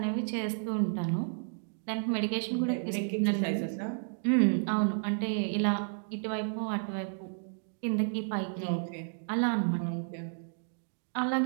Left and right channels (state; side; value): silent; left; digital silence